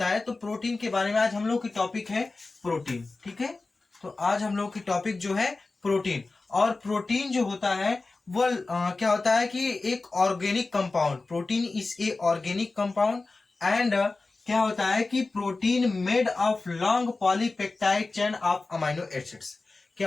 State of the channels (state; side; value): quieter; right; 3.6 dB